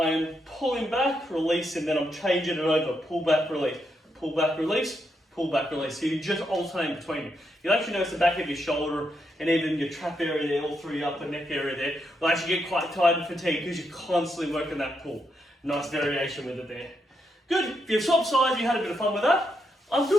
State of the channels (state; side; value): normal; both; correlation 0.81